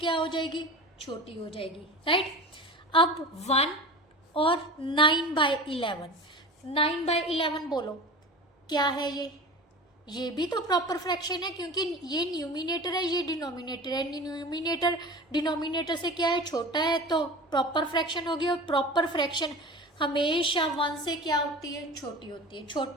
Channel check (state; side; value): normal; both; correlation 0.34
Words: हो जाएगी, छोटी हो जाएगी, राइट। अब 1 और 9/11, 9/11 बोलो क्या है, ये भी तो प्रॉपर फ्रैक्शन है, क्योंकि ये न्यूमिनेटर है, ये डिनोमिनेटर है। न्यूमिनेटर डिनोमिनेटर से क्या है, छोटा है, तो प्रॉपर फ्रैक्शन होगी। और प्रॉपर फ्रैक्शन हमेशा 1 से क्या होती है, छोटी होती है,